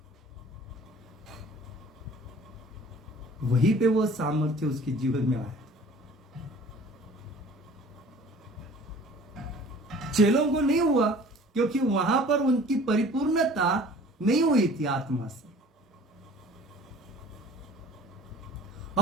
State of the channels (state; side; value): normal; both; correlation 0.48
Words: वहीं पे वो सामर्थ्य उसके जीवन में आया। चेलों को नहीं हुआ क्योंकि वहां पर उनकी परिपूर्णता नहीं हुई थी आत्मा से।